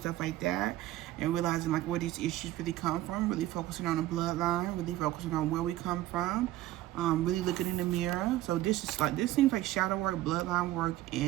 like that. And realizing like where these issues really come from. Really focusing on the bloodline. Really focusing on where we come from. Really looking in the mirror. So this seems like shadow work, bloodline work,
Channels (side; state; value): left; quieter; 15.0 dB